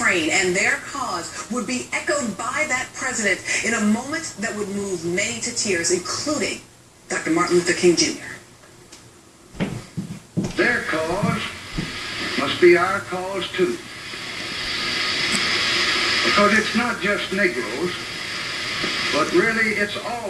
and their cause would be echoed by that president in a moment that would move many to tears, including Dr. Martin Luther King Jr. Their cause must be our cause too. Because it's not just Negroes, but really it's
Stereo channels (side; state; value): both; identical; correlation 1.00